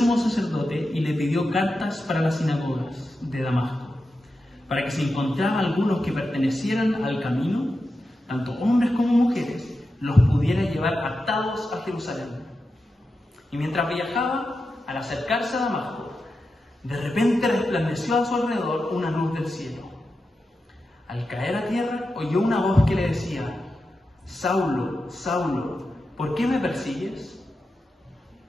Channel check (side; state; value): both; normal; correlation 0.90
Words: sacerdote y le pidió cartas para las sinagogas de Damasco, para que si encontraba algunos que pertenecieran al camino, tanto hombres como mujeres, los pudiera llevar atados a Jerusalén. Y mientras viajaba, al acercarse a Damasco, de repente resplandeció a su alrededor una luz del cielo. Al caer a tierra, oyó una voz que le decía: Saulo, Saulo, ¿por qué me persigues?